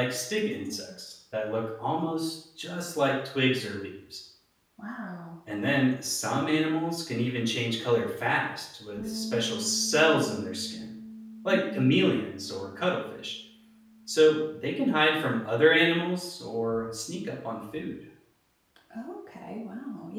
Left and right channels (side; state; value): both; identical; correlation 1.00